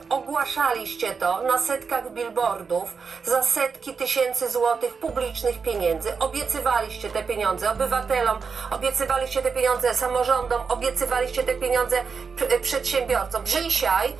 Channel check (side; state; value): left; quieter; 5.4 dB